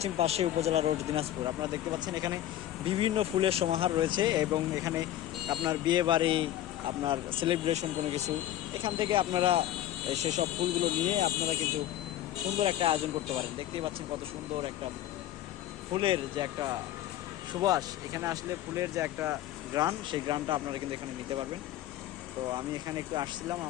পাশে উপজেলা রোড দিনাজপুর। আপনারা দেখতে পাচ্ছেন এখানে বিভিন্ন ফুলের সমাহার রয়েছে এবং এখানে আপনার বিয়ে বাড়ি, আপনার সেলিব্রেশন কোনো কিছু, এখান থেকে আপনারা সেসব ফুলগুলো নিয়ে আপনারা কিন্তু সুন্দর একটা আয়োজন করতে পারেন। দেখতেই পাচ্ছেন কত সুন্দর একটা ফুলের যে একটা সুবাস, এখানে আসলে ফুলের যে একটা গ্রান, সেই গ্রানটা আপনারা কিন্তু এখানে নিতে পারবেন। তো আমি এখানে একটু আসছিলাম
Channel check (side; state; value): right; quieter; 12.9 dB